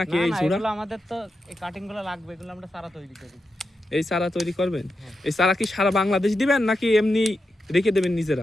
নাকি? এই চূড়া এগুলো আমাদের তো এই কাটিংগুলো লাগবে, এগুলো আমরা চারা তৈরি করি। এই চারা তৈরি করবেন? এই চারা কি সারা বাংলাদেশ দিবেন নাকি এমনি রেখে দেবেন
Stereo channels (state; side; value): normal; both; correlation 0.88